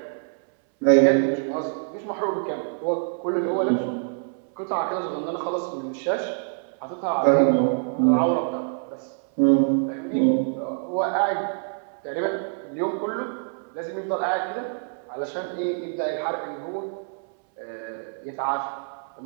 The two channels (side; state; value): left; silent; 60 dB below the other